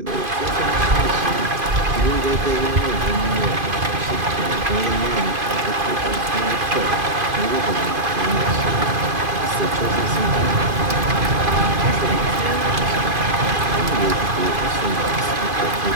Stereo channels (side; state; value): left; late; 2.5 ms